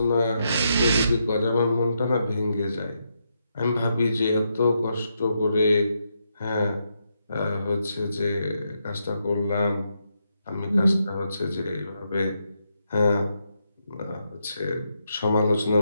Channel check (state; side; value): inverted; both; correlation -0.81